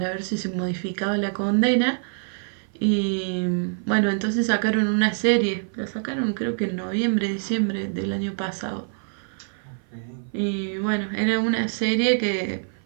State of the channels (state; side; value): silent; left; 57 dB below the other